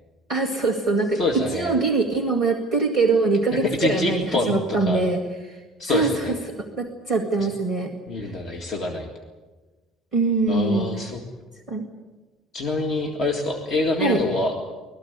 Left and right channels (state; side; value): normal; both; correlation 0.42